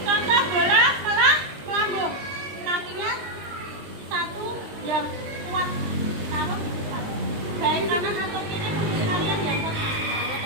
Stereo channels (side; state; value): left; late; 20 ms